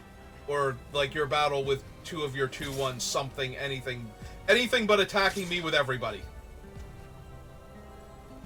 Or, like, your battle with 2 of your 2/1 something, anything. Anything but attacking me with everybody.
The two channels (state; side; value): identical; both; correlation 1.00